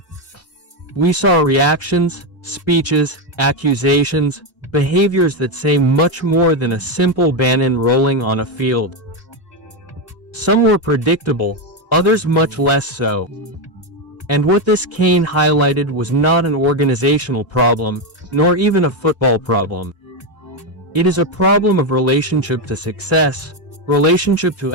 We saw reactions, speeches, accusations, behaviors that say much more than a simple banana rolling on a field. Some were predictable, others much less so. And what this CAN highlighted was not an organizational problem, nor even a football problem. It is a problem of relationship to success, relationship to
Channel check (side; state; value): right; late; 1.3 ms